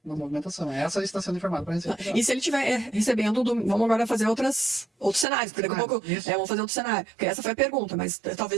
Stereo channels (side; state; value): left; drops out; at 5.2 s